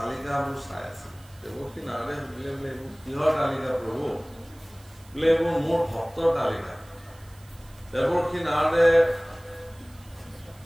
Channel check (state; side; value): noise; right; hiss, 26 dB below the sound